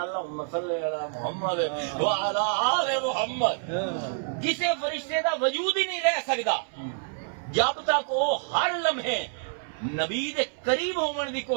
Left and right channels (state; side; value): silent; left; 60 dB below the other